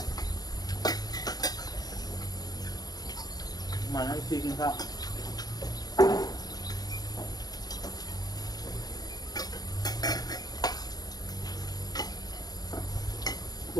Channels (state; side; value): late; right; 0.19 ms